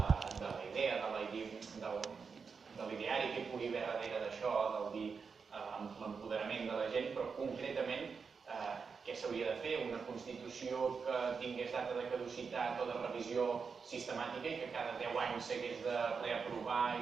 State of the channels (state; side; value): quieter; left; 5.5 dB